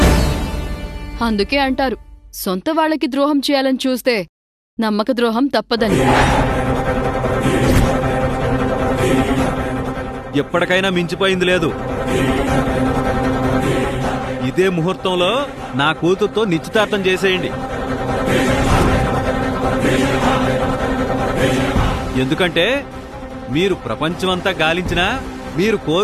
అందుకే అంటారు, సొంత వాళ్ళకి ద్రోహం చేయాలని చూస్తే నమ్మక ద్రోహం తప్పదని. ఎప్పటికైనా మించిపోయింది లేదు. ఇదే ముహూర్తంలో నా కూతురుతో నిశ్చితార్థం చేసేయండి. ఎందుకంటే మీరు ప్రపంచమంతా గాలించినా మీరు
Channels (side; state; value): both; identical; correlation 1.00